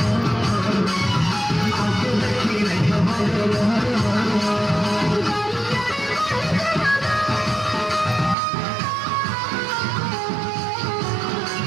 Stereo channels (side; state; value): left; drops out; at 8.3 s